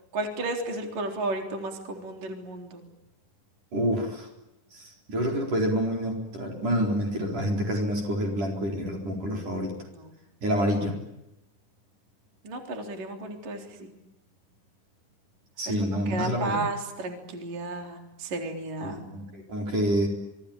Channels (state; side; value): late; left; 10 ms